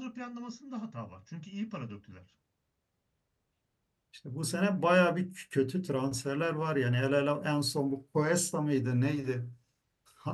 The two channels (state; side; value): identical; both; correlation 1.00